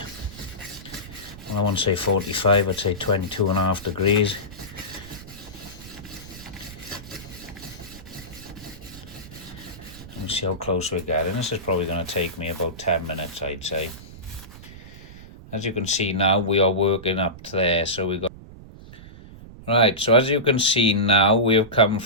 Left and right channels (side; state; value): right; noise; rumble, 17 dB below the sound